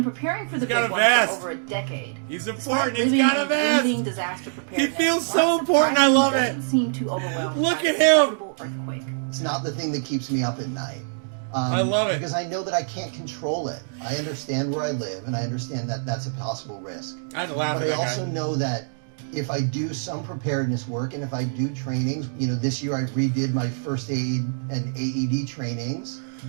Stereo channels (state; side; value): silent; left; digital silence